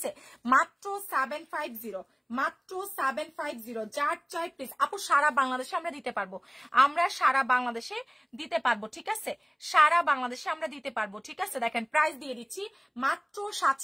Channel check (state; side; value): identical; both; correlation 1.00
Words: মাত্র 750, মাত্র 750। যার চাই প্লিজ আপু, সারা বাংলাদেশে আমরা দিতে পারবো, আমরা সারা বাংলাদেশে দিতে পারবো, ঠিক আছে? সারা বাংলাদেশে আমরা দিতে পারবো, ঠিক আছে? দেখেন প্রাইস দিয়ে দিচ্ছি মাত্র